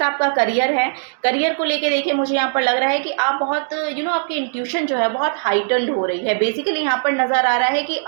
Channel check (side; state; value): left; silent; digital silence